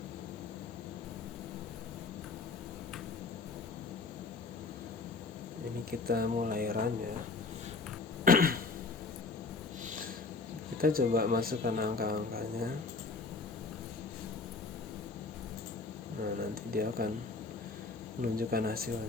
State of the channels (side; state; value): right; quieter; 4.0 dB